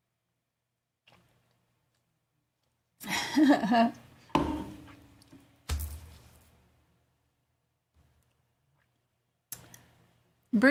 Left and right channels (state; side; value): identical; both; correlation 1.00